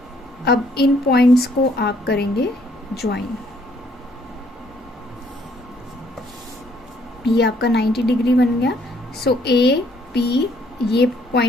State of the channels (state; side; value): normal; both; correlation 0.66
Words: अब इन पॉइंट्स को आप करेंगे ज्वाइन। ये आपका 90 डिग्री बन गया। सो AP, ये